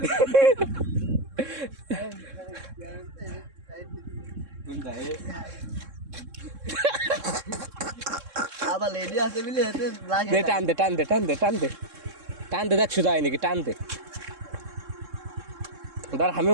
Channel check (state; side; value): late; left; 3.7 ms